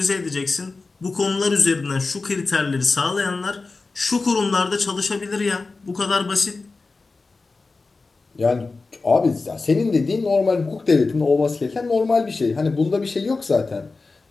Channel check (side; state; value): right; quieter; 3.8 dB